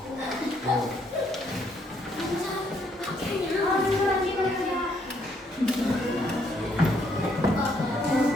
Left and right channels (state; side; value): normal; both; correlation 0.71